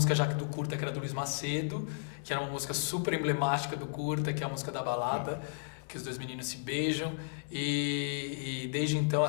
já do curta que era do Luiz Macedo, que era uma música super emblemática do curta, que é a música da balada, que os dois meninos se beijam, e desde então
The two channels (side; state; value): right; silent; 55 dB below the other